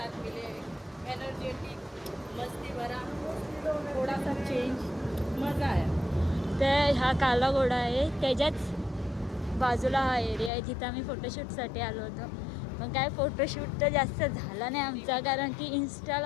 मिले. एनर्जेटिक मस्ती भरा थोड़ा सा चेंज मज़ा आया. तर हा काला घोडा आहे त्याच्याच बाजूला हा एरिया आहे जिथं आम्ही फोटोशूटसाठी आलो होतो. पण काय फोटोशूट तर जास्त झाला नाही आमचा कारण की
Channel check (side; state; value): right; drops out; at 10.5 s